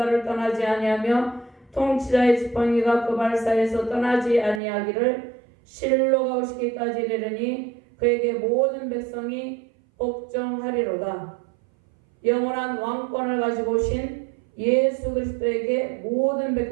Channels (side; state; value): left; drops out; at 4.6 s